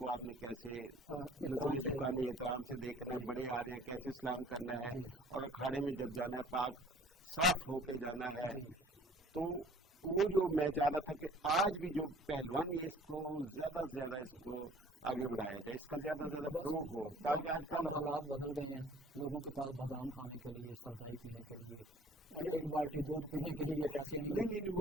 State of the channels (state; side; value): normal; both; correlation 0.52